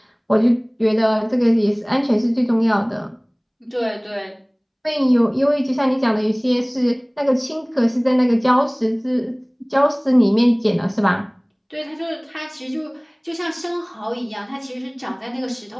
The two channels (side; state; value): both; identical; correlation 1.00